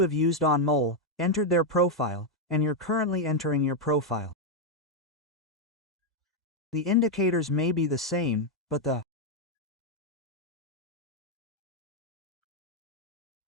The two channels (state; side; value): normal; both; correlation 0.01